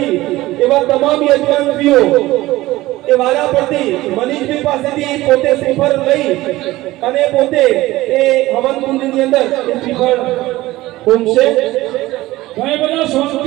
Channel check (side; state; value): left; quieter; 17.7 dB